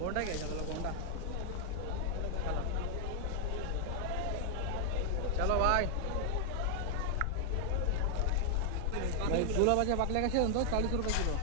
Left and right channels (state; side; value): different; both; correlation 0.00